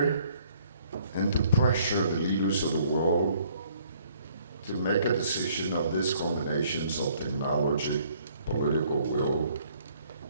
and to pressure the leaders of the world to make a decision of these combinations of technology, political will,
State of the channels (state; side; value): inverted; both; correlation -0.63